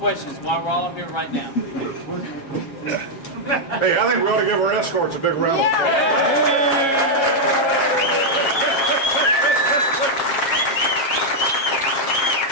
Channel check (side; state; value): right; late; 7.3 ms